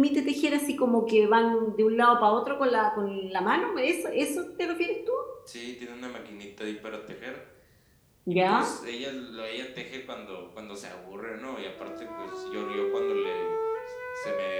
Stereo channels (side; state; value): both; identical; correlation 1.00